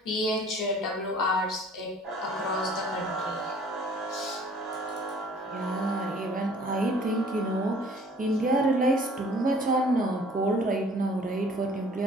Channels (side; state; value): both; normal; correlation 0.53